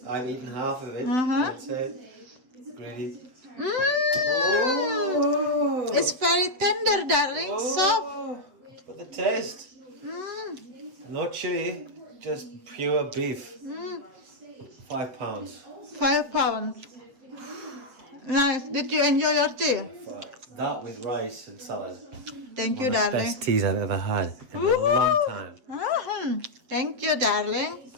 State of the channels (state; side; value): late; left; 7.8 ms